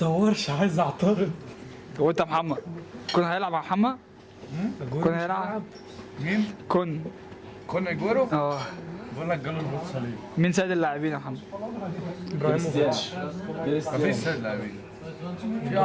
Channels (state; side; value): identical; both; correlation 1.00